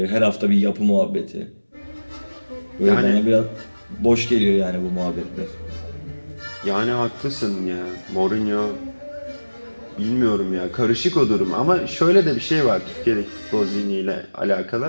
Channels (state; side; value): inverted; both; correlation -1.00